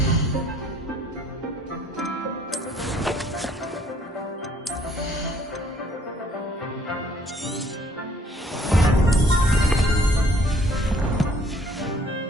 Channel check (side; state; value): both; normal; correlation 0.61